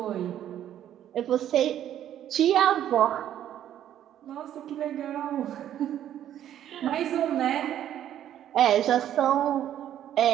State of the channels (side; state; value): left; quieter; 11.1 dB